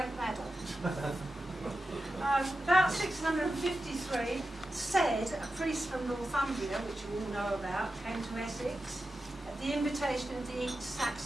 Meadow. About 653, said a priest from Northumbria, which you all know about, came to Essex at the invitation of the East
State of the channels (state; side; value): normal; both; correlation 0.91